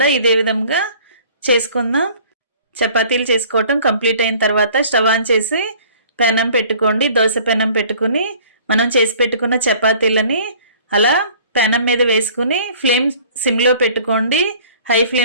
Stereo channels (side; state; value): both; inverted; correlation -0.51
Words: ఇదే విధంగా చేసుకుందాం. చపాతీలు చేసుకోవటం కంప్లీట్ అయిన తర్వాత స్టవ్ ఆన్ చేసి పెనం పెట్టుకోండి. దోశ పెనం పెట్టుకుని మనం చేసి పెట్టుకున్న చపాతీలని అలా పెనం మీద వేసుకుని ఫ్లేమ్ సిమ్లో పెట్టుకోండి. హై